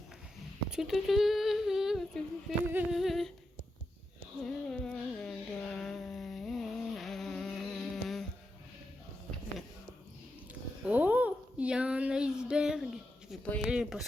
Oh, il y a un iceberg. Je vais pas y aller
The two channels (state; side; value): normal; both; correlation 0.87